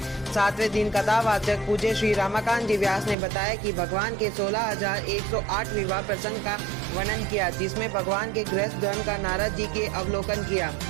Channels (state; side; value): drops out; left; at 3.2 s